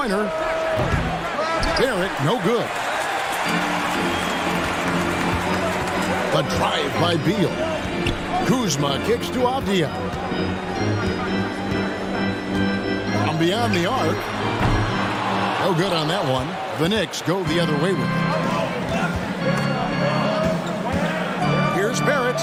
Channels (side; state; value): both; identical; correlation 1.00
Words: Barrett, no good. The drive by Beal. Kuzma kicks to Avdia. From beyond the arc. No good on that one. The Knicks go the other way with it. Here's Barrett.